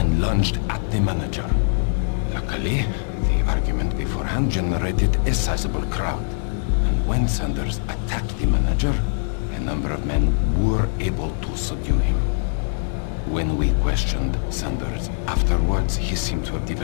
lunged at the manager. Luckily, the argument beforehand generated a sizable crowd, and when Sanders attacked the manager, a number of men were able to subdue him. When we questioned Sanders afterwards, he seemed to have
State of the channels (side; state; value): right; silent; digital silence